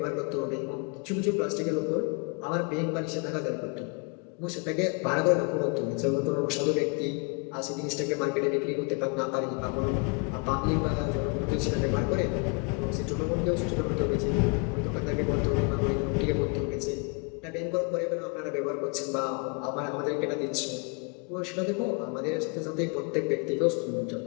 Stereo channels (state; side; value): quieter; right; 34.0 dB